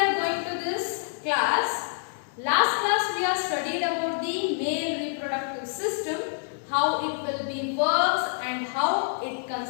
going to this class, last class we have studied about the male reproductive system, how it will be works and how it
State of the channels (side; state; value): right; silent; digital silence